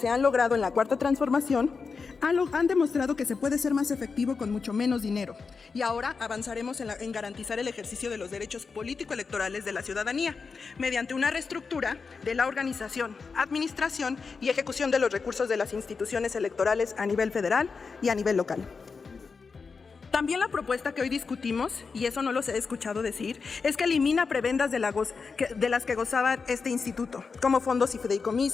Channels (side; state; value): right; quieter; 5.0 dB